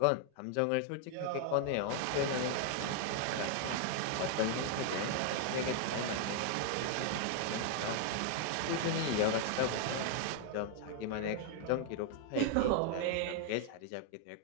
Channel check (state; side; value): different; both; correlation 0.00